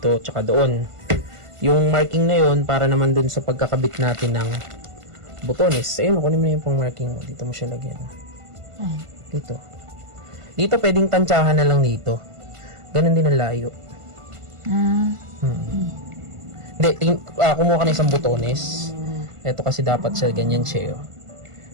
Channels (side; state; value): left; late; 1.5 ms